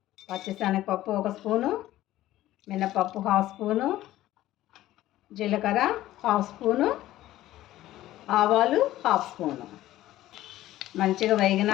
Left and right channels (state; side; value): quieter; right; 14.8 dB